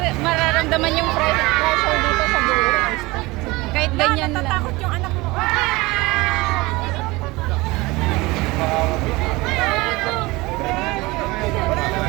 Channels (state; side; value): quieter; left; 22.0 dB